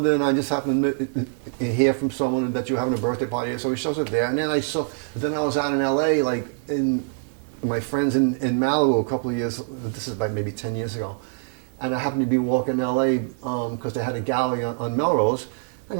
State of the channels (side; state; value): left; silent; 62 dB below the other